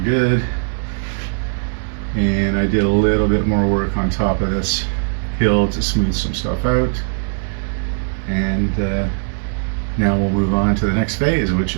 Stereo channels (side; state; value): left; silent; digital silence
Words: And I did a little bit more work on top of this hill to smooth some stuff out. And now we'll move on to the next phase, which